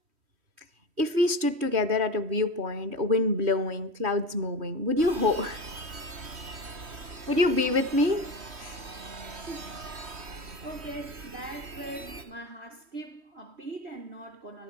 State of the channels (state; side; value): late; left; 3.1 ms